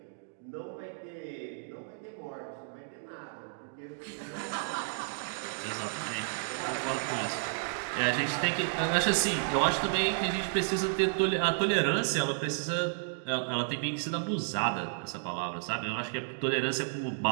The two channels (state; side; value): silent; left; digital silence